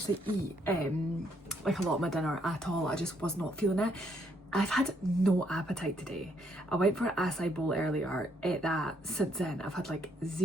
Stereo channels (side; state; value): both; normal; correlation 0.71